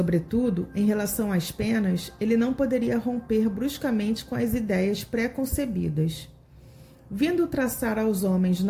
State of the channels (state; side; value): identical; both; correlation 1.00